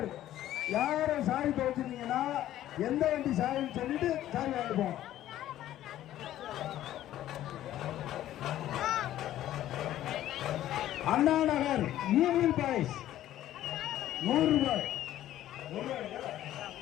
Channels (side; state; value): right; quieter; 13.0 dB